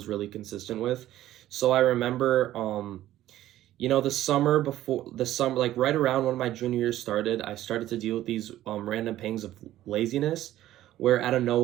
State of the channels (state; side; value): quieter; left; 13.8 dB